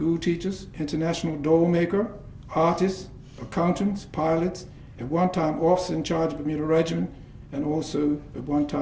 teachers, international doll maker, artists, accountants, pilots, at one time officer in charge of Bermuda Regiment, and also at one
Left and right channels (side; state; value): both; identical; correlation 1.00